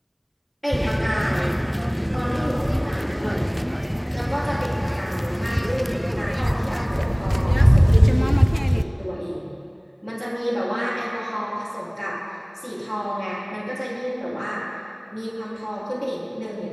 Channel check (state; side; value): identical; both; correlation 1.00